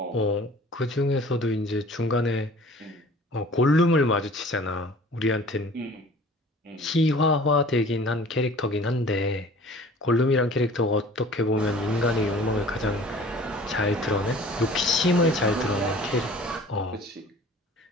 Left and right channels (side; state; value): both; normal; correlation 0.47